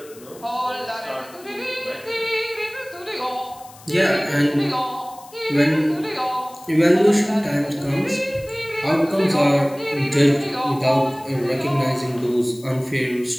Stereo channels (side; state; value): left; noise; hiss, 22 dB below the sound